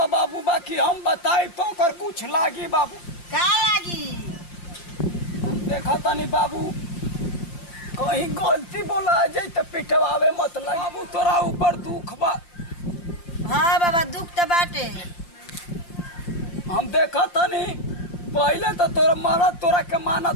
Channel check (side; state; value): right; late; 5.8 ms